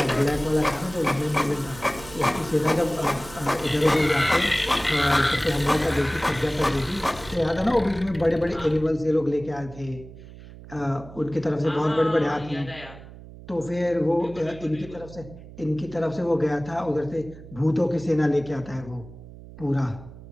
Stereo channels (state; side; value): noise; right; hum, 17 dB below the sound